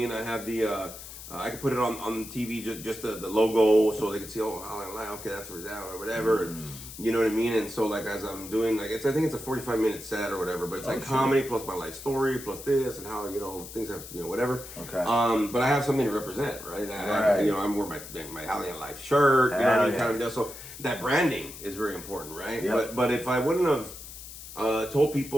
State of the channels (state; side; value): noise; left; hiss, 13 dB below the sound